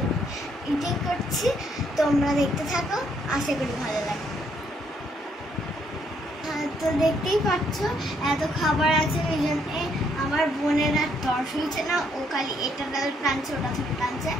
ইটিং করছি। তোমরা দেখতে থাকো, আশা করি ভালো লাগে। তো দেখতেই পাচ্ছ এত খাবার আছে, এই জন্য আমার বোনের আর তর্স হয়েছে না, ও খালি এটা টানছে ওটা থেকে টানছে।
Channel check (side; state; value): both; normal; correlation 0.71